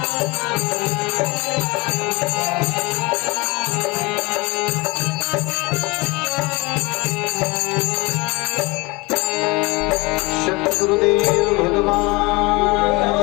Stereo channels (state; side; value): quieter; right; 25.0 dB